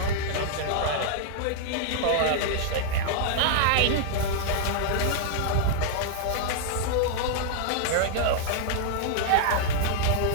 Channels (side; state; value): both; different; correlation -0.01